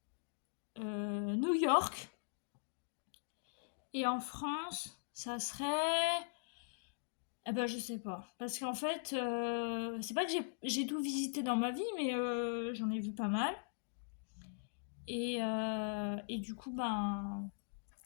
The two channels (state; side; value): silent; right; digital silence